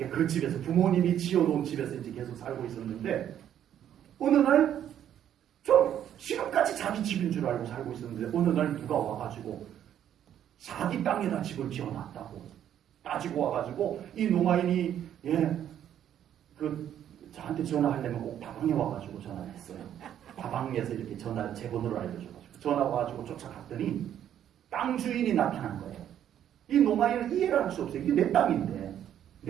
그 집에서 부모님이 지어놓은 집에서 이제 계속 살고 있었는데, 어느 날, 좀 지금까지 자기 집인 줄 알고 살고 있었는데, 어느 날 누가 와가지고, 자기 땅에다 집을 지어놨다고 따지고 와가지고, 이 농아인이, 예, 저한테 전화하려면 꼭 다방에 와가지고 전화를 했어요. 다방에서 이렇게 제 번호를 알려줘가지고 전화 와가지고 쫓아갔더니 땅 주인이 나타난 거예요. 이 농아인은 이해를 할 수 없어요. 이게 내 땅인데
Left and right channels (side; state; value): left; quieter; 10.3 dB